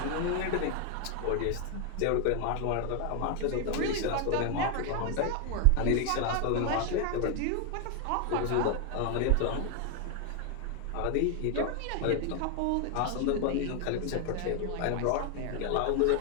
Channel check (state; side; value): different; both; correlation 0.01